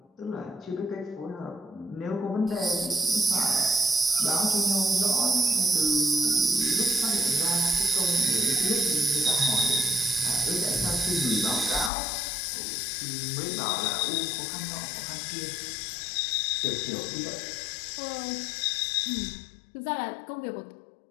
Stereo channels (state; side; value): drops out; right; at 11.9 s